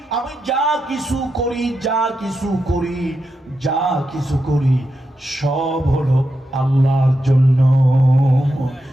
আমি যা কিছু করি, যা কিছু করি, যা কিছু করি, সব হলো আল্লাহর জন্য।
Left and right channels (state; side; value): normal; both; correlation 0.87